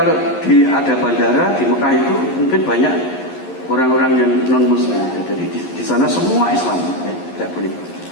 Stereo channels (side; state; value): right; late; 11 ms